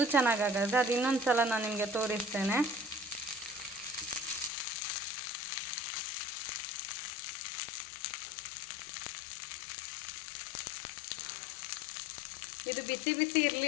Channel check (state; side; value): drops out; right; at 4.5 s